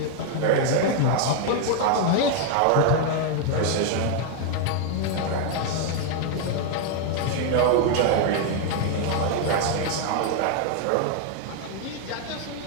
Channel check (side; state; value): both; different; correlation 0.01